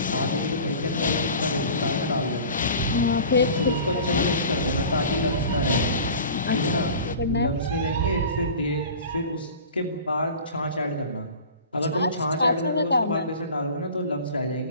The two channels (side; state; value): both; inverted; correlation -0.39